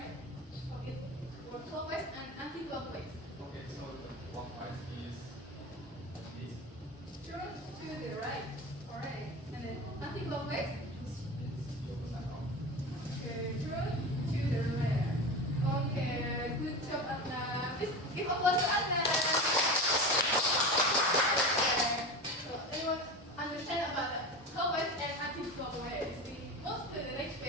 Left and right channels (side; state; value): both; normal; correlation 0.27